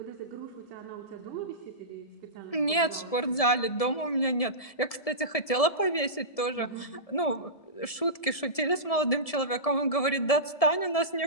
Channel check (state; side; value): late; right; 1.7 ms